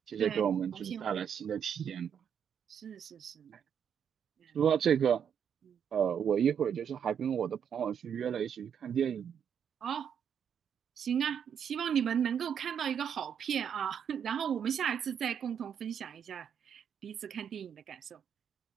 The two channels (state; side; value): quieter; left; 8.1 dB